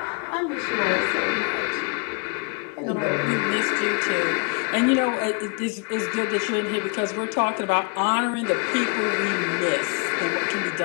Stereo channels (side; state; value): right; quieter; 32.9 dB